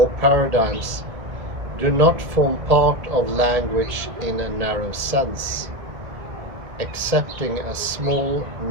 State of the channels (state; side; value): late; left; 1.8 ms